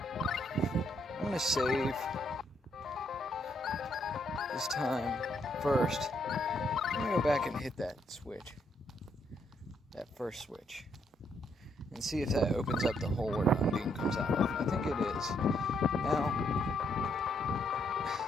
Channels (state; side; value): normal; both; correlation 0.74